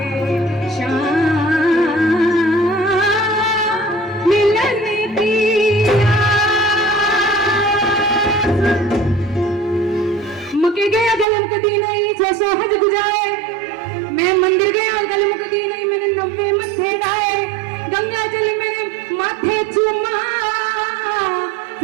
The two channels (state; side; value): drops out; left; at 11.2 s